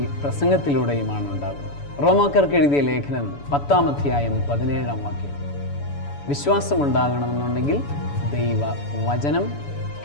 പ്രസംഗത്തിലൂടെയുമാണ് ഉണ്ടാകുന്നത്. റോമാക്കാർക്ക് എഴുതിയ ലേഖനം 10-ാം അധ്യായം 17-ാം വാക്യം. വിശ്വാസം ഉണ്ടാകണമെന്നുണ്ടെങ്കിൽ ദൈവ വചനം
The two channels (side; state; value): right; late; 7.0 ms